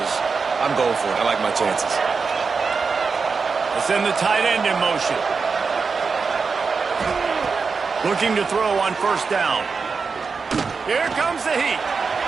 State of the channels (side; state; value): left; quieter; 5.0 dB